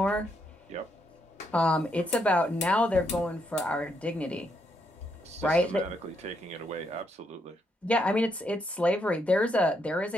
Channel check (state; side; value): normal; both; correlation 0.77